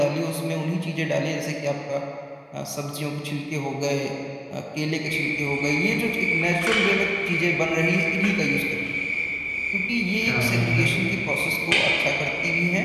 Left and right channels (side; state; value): both; identical; correlation 1.00